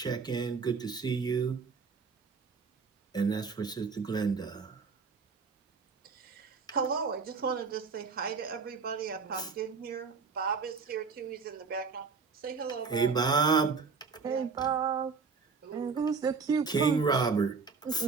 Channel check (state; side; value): quieter; left; 5.1 dB